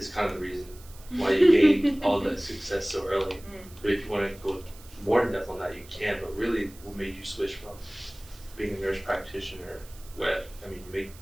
kind of the reason why you gained all that success so early. But if you want to go more in depth on that, you can. But really, what made you switch from being a nurse practitioner, where you make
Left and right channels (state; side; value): noise; right; hiss, 22 dB below the sound